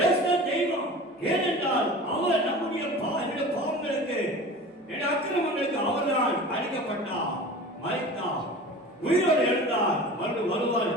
தெய்வம். ஏனென்றால் அவர் நம்முடைய பாவங்களுக்கு, அக்கிரமங்களுக்கு அவர்தான் அழிக்கப்பட்டார், மரித்தார், உயிரோடு எழுந்தார், மறுபடியும் வருவார்.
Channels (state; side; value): normal; both; correlation 0.37